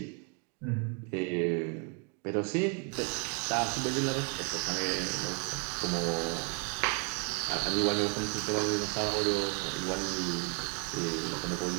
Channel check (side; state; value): left; quieter; 35.5 dB